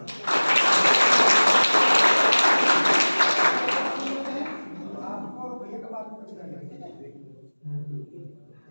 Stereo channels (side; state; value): both; inverted; correlation -1.00